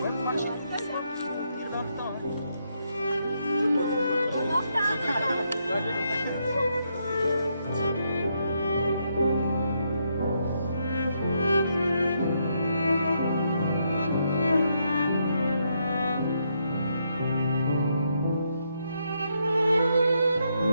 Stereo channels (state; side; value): inverted; both; correlation -0.78